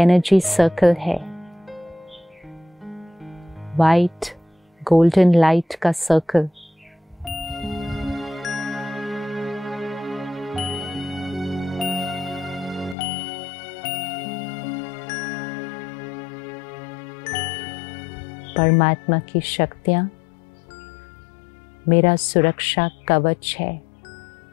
सर्कल है, वाइट गोल्डन लाइट का सर्कल। परमात्मा की शक्तियां मेरा सुरक्षा कवच है।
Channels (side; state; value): right; drops out; at 13.0 s